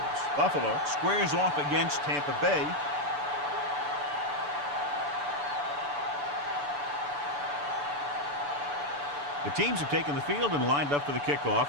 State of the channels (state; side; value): late; left; 6.9 ms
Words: Buffalo squares off against Tampa Bay. The teams have taken the field and lined up for the